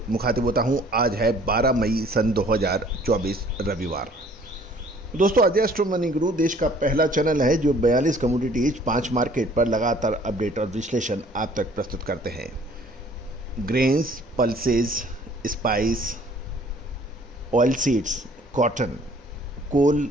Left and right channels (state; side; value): normal; both; correlation 0.55